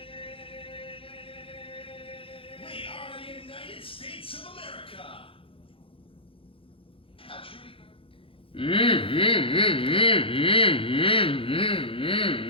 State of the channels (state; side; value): late; right; 0.26 ms